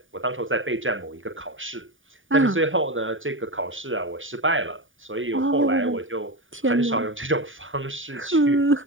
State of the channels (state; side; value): late; left; 0.57 ms